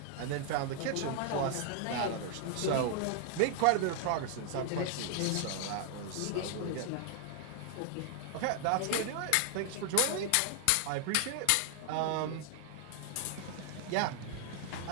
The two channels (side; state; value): both; different; correlation 0.00